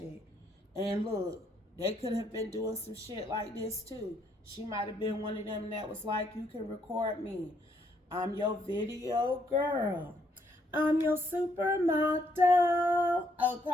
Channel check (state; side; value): normal; both; correlation 0.71